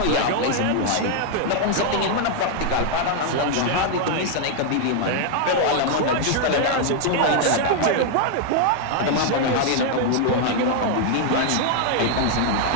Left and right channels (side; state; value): both; different; correlation 0.00